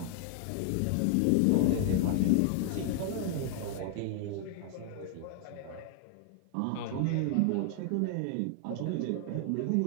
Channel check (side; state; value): both; different; correlation 0.00